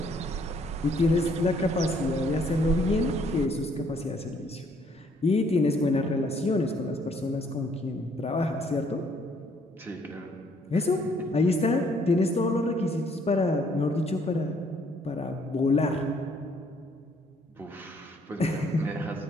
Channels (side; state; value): both; normal; correlation 0.65